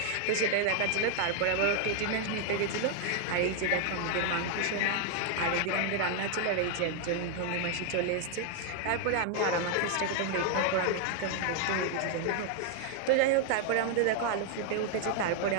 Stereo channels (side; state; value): both; different; correlation 0.00